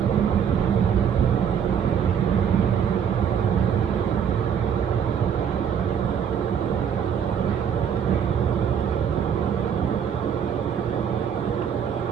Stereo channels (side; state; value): left; quieter; 8.0 dB